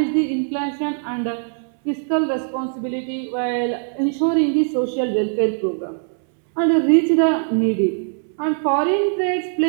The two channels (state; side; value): silent; left; 65 dB below the other